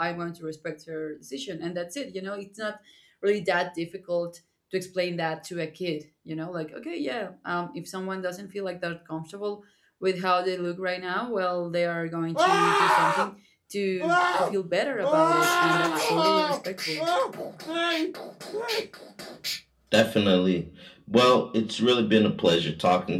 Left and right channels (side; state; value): both; identical; correlation 1.00